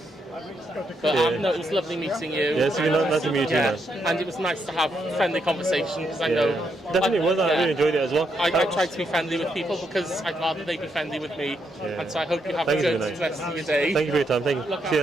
But no, it was lovely meeting you. Yeah, it's been nice to meet you too, man. And it was nice to have friendly conversation because I know. Definitely was. I really enjoyed it as well. I try to be friendly with people because I'd rather they be friendly with me. And so I hope you have a good rest of your day. Thank you for your time. Thank you. See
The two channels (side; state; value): both; normal; correlation 0.79